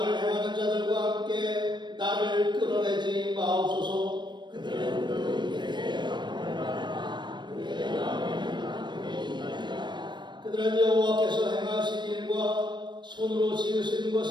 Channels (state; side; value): late; left; 0.22 ms